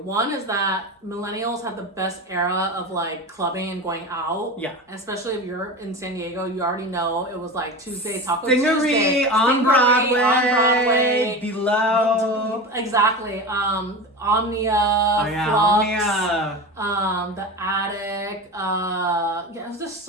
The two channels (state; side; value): normal; both; correlation 0.27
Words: One is that millennials had the best era of like clubbing and going out. Yeah. Especially if you're in San Diego, you already know it was like Tuesday, Taco Stingery Tuesday. on Broadway. On Broadway. Below. Exactly. Omnia. Oh yeah, Flux, Omnia. The Attic. Yeah, there's just